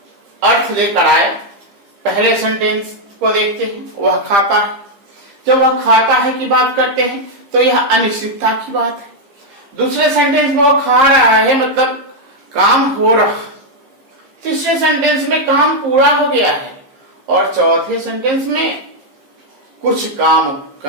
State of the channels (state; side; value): late; left; 15 ms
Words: अर्थ लेकर आए। पहले सेंटेंस को देखते हैं, वह खाता है। जब वह खाता है की बात करते हैं तो यह अनिश्चितता की बात है। दूसरे सेंटेंस में वह खा रहा है, मतलब काम हो रहा। तीसरे सेंटेंस में काम पूरा हो गया है, और चौथे सेंटेंस में कुछ काम